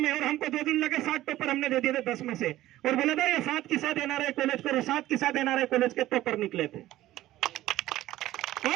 में, और हमको 2 दिन लगे। 7 टॉपर हमने दे दिए थे 10 में से, और बोला था ये 7 के साथ एनआरआई कॉलेज करो, 7 के साथ एनआरआई कॉलेज के टॉपर निकले थे।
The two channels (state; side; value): quieter; left; 15.2 dB